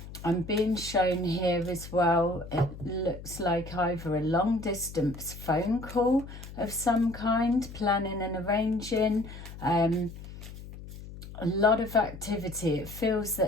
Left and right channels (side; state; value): left; noise; hum, 13 dB below the sound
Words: being shown here as well, it looks like either a long distance phone call of some kind, planning and arranging, a lot of activity. It feels